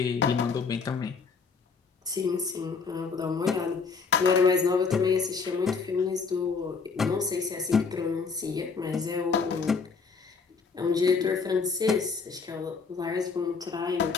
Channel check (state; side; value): quieter; right; 5.1 dB